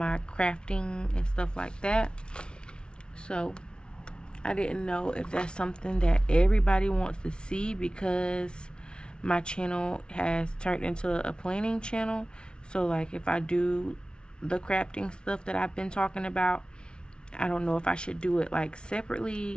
crafting and stuff like that. So I didn't know if that's something that everybody wants to see, because my channel has turned into a planning channel. So like if I do the crafting stuff that I've been talking about, I don't know if I should do it like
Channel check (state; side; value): late; right; 0.055 ms